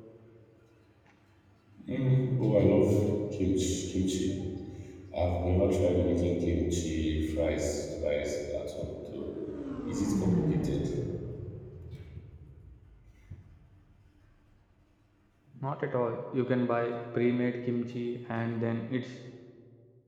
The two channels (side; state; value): both; identical; correlation 1.00